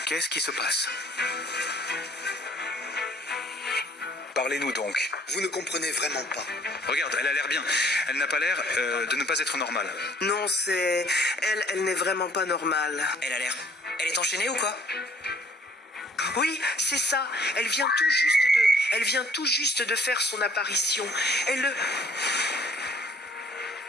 Qu'est-ce qui se passe? Parlez-nous donc. Vous ne comprenez vraiment pas. Regarde, elle a l'air bien. Elle n'a pas l'air de ne pas être normale. Non, c'est... Elle n'est vraiment pas normale. Elle a l'air... Elle est enchaînée ou quoi? Oui, c'est ça. Elle vient tout juste de faire son apparition. Elle...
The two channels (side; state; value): both; normal; correlation 0.58